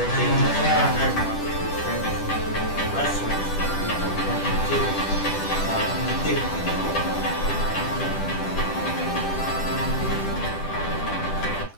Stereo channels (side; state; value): right; late; 10 ms